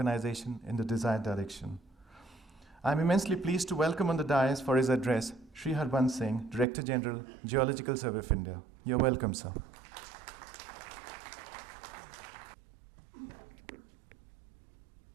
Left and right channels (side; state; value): left; drops out; at 6.7 s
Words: in the desired direction. I'm immensely pleased to welcome on the dais for his address Sri Harbans Singh, Director General, Geological Survey of India. You're welcome, sir.